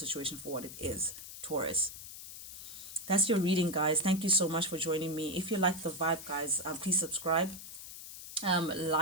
for what it is. Taurus, that's your reading, guys. Thank you so much for joining me. If you like the vibe, guys, please subscribe,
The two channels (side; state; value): left; noise; hiss, 12 dB below the sound